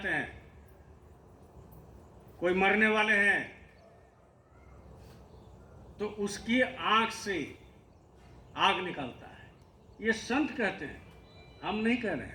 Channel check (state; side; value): identical; both; correlation 1.00